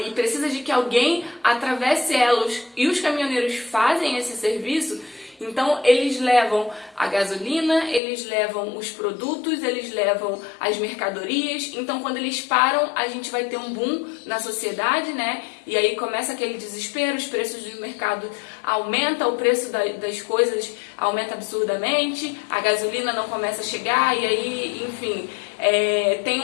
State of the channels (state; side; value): drops out; right; at 8.0 s